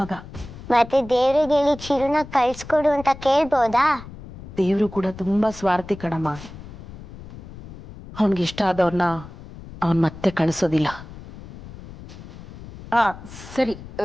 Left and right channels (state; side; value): noise; left; rumble, 15 dB below the sound